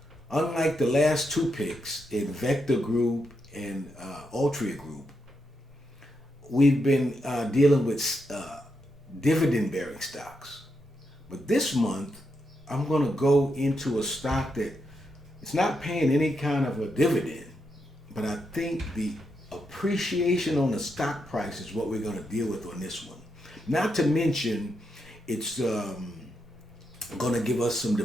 Unlike the last two picks in Vector Group and Altria Group, we've been dealing with dividend-bearing stocks. But this month, I'm going to go into a stock that it's not paying any kind of a dividend, but I think the appreciation on the stock price is what we're going to deal with on this one. Not to mention, it's going to give us some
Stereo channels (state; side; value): normal; both; correlation 0.83